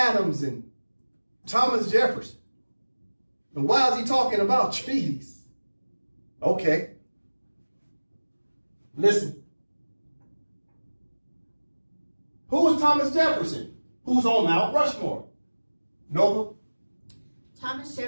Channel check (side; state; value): both; inverted; correlation -1.00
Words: and Thomas Jefferson? And why is he talking about treaties? Okay. Listen. Who was Thomas Jefferson? Who's on Mount Rushmore? Nova? Thomas